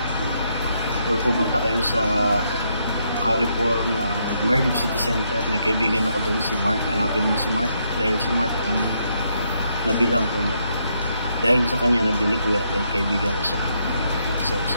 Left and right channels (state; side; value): inverted; both; correlation -0.76